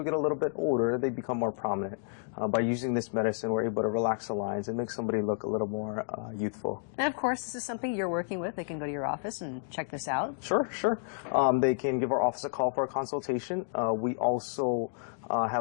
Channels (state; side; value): silent; right; digital silence